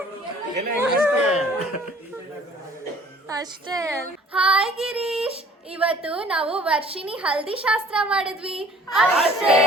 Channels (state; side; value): normal; both; correlation 0.54